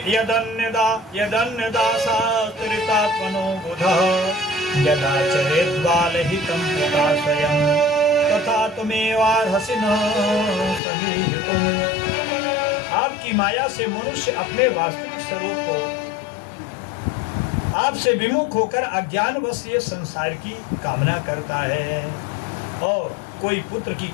यदन्यदासात्रितात्मनो बुधः यदा चरेद्बालहितं पिता स्वयं तथा तुमेवार्हसि न समीहितुम्। आपकी माया से मनुष्य अपने वास्तविक स्वरूप को आपसे विमुख होकर अज्ञानवश ये संसार की कामना करता है, और कोई पुत्र की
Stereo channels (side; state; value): right; drops out; at 10.8 s